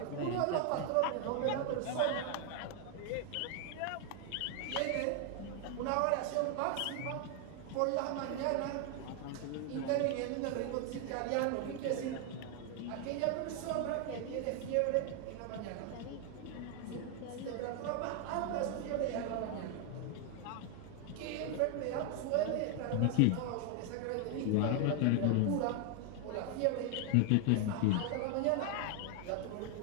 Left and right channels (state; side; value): different; both; correlation 0.00